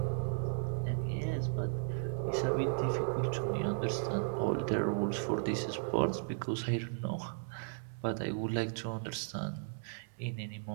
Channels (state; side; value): silent; left; 54 dB below the other